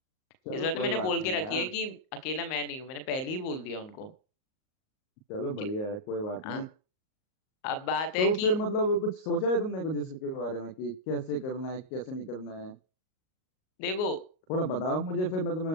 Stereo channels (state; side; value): late; right; 38 ms